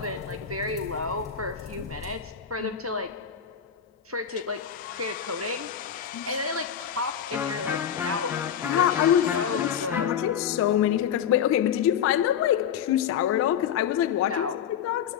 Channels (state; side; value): quieter; right; 8.6 dB